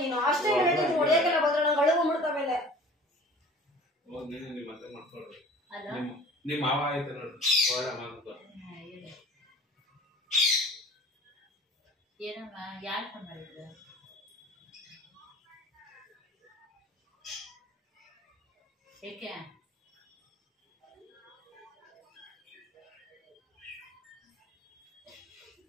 ನೀನು? ಅಷ್ಟೇ ಹೇಳಿದ್ರೆ ಹೊಡೆಯಕ್ಕೆಲ್ಲ ಬಂದ್ರೆ ನಂಗೆ ಅಳುಗು ಮಾಡ್ತಾ ಮೇಲೆ. ನಿಮ್ಮ ಮತ್ತೆ ಮಾಡ್ಕೊಳ್ಳಿ. ನಿಮ್ಮ ಮಾವ ಆಯ್ತು ನೋಡು, ಒಳ್ಳೆ ಮಾತು. ಏನಮ್ಮ ಯಾರು ಫೋನ್ ಮಾಡಿದ್ರು? ಏಕೆ?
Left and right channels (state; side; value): normal; both; correlation 0.45